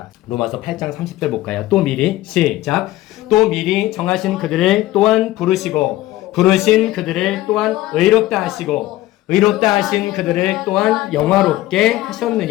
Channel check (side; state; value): right; quieter; 16.2 dB